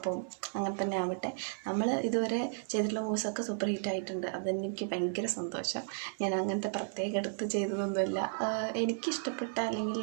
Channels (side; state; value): left; silent; digital silence